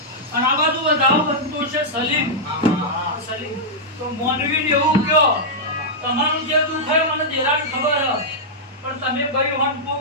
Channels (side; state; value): both; normal; correlation -0.08